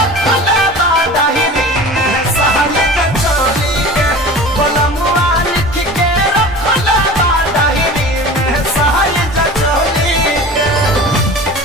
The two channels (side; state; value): both; normal; correlation 0.37